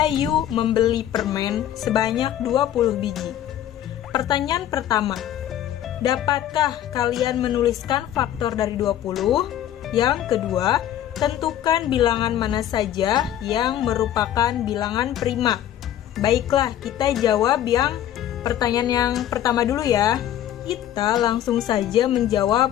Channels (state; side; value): quieter; right; 11.6 dB